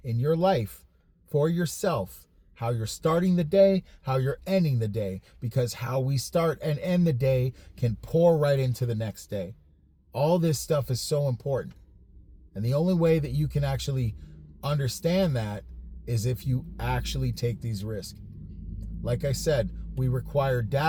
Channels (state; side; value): identical; both; correlation 1.00